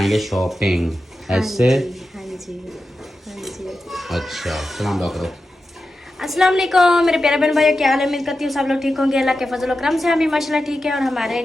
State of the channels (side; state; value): both; normal; correlation 0.91